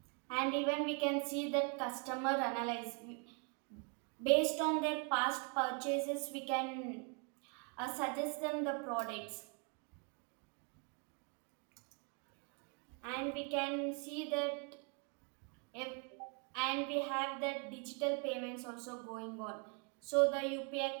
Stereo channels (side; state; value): left; quieter; 37.1 dB